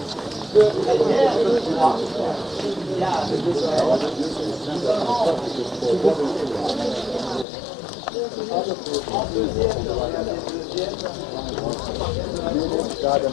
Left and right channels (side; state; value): right; drops out; at 7.5 s